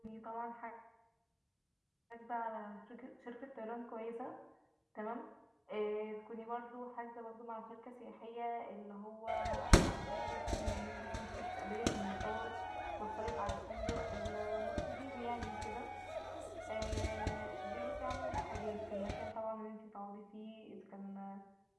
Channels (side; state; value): both; identical; correlation 1.00